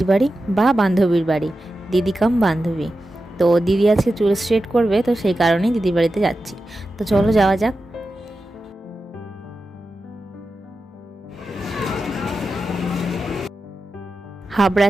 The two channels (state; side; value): normal; both; correlation 0.92